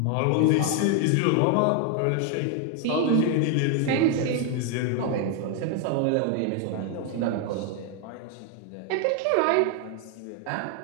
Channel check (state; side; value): different; both; correlation 0.00